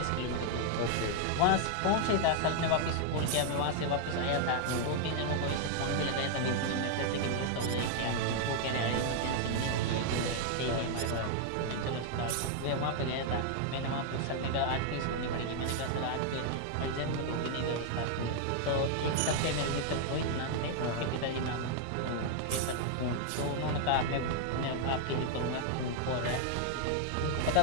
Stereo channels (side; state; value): both; different; correlation 0.00